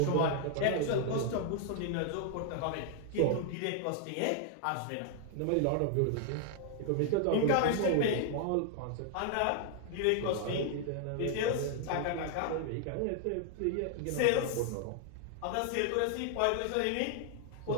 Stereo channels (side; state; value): both; different; correlation 0.00